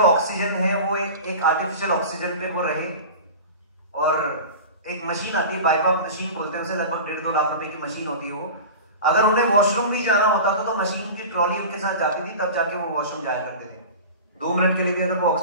ऑक्सीजन है वो एक आर्टिफिशियल ऑक्सीजन पे वो रहे। और एक मशीन आती है, बाइपाप मशीन बोलते हैं उसे, लगभग 1.5-2 लाख रुपए की मशीन होती है वो। अगर उन्हें वॉशरूम भी जाना होता था तो मशीन की ट्रॉली उनके साथ जाती थी, तब जाके वो वॉशरूम जाया करते थे। 2 मिनट के लिए भी अगर वो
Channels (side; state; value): both; inverted; correlation -0.33